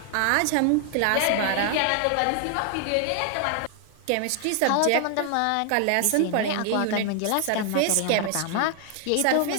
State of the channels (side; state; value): both; different; correlation 0.00